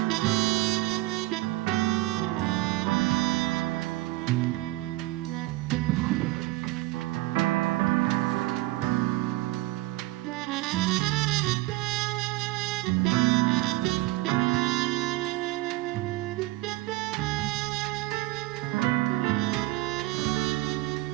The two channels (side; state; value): left; quieter; 18.8 dB